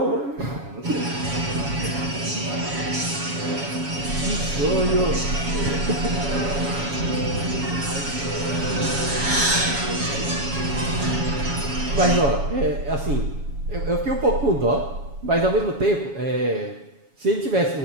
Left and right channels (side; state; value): left; late; 7.2 ms